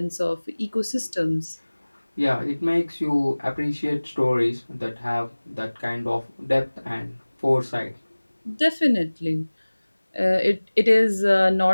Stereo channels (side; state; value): both; inverted; correlation -1.00